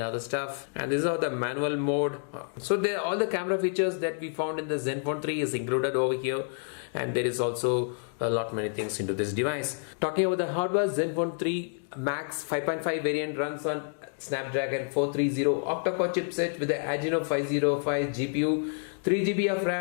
other stuff, and these are the manual mode. So there all the camera features that we found in the Zenfone 3 is included over here, and there is also a lot many things into this device. Talking about the hardware, Zenfone 3 Max 5.5 variant runs on Snapdragon 430 octa-core chipset with the Adreno 505 GPU, 3 GB of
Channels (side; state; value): right; silent; digital silence